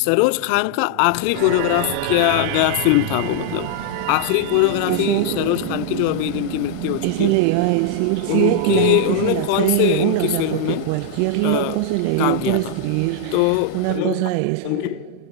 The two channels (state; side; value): different; both; correlation -0.01